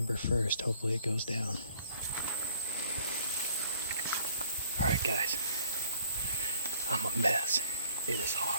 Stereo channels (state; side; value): inverted; both; correlation -0.57